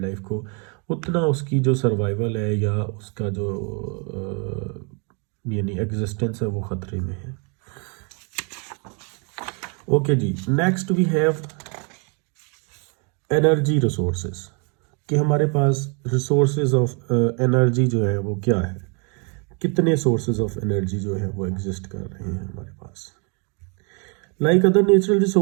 लाइफ को उतना उसकी जो सर्वाइवल है या उसका जो यानी एग्जिस्टेंस है वो ख़तरे में है। ओके जी, next we have energy resources कि हमारे पास रिसोर्सेज ऑफ एनर्जी जो है वो क्या है, कितने सोर्सेज ऑफ एनर्जी जो है वो एग्जिस्ट कर रहे हैं हमारे पास। Like other natural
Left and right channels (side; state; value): left; quieter; 35.2 dB